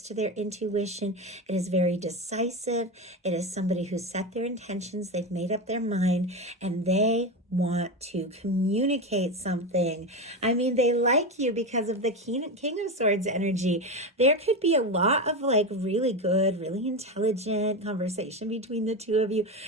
to their intuition. It is very decisive. It is somebody who set their intentions. They've made up their mind and they want to communicate something. I mean, they like you because of the King of Swords energy. There could be a lot of really good, really intelligent conversation between the two of you.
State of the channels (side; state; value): both; normal; correlation 0.18